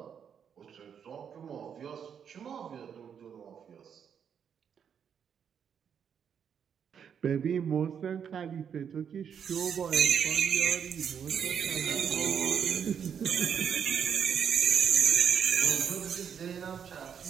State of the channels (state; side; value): quieter; left; 7.7 dB